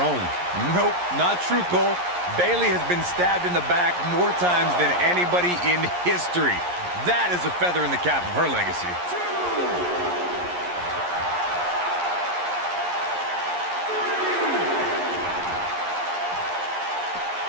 Nope, not true, Cole. Bayley has been stabbed in the back more times than anybody in history. That is a feather in the cap of her legacy.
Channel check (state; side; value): late; left; 11 ms